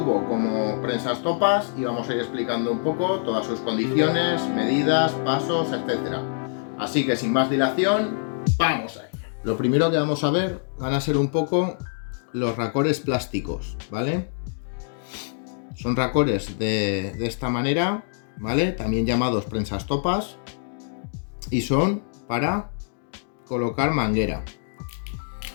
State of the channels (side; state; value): right; silent; digital silence